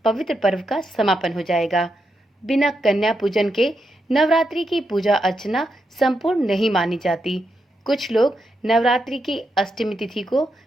पवित्र पर्व का समापन हो जाएगा। बिना कन्या पूजन के नवरात्रि की पूजा अर्चना संपूर्ण नहीं मानी जाती। कुछ लोग नवरात्रि की अष्टमी तिथि को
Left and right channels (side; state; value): both; normal; correlation 0.84